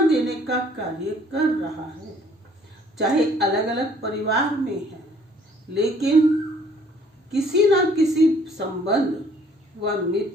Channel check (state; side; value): normal; both; correlation 0.59